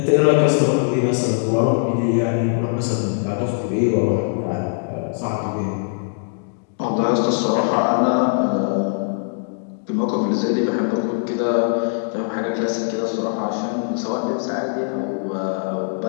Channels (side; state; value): right; silent; digital silence